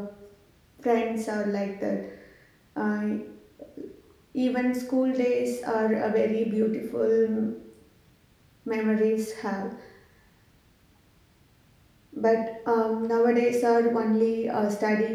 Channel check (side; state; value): both; identical; correlation 1.00